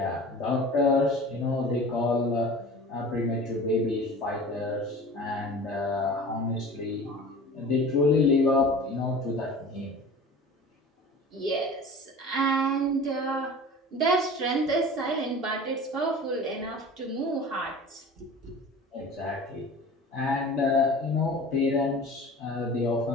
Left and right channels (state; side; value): normal; both; correlation 0.39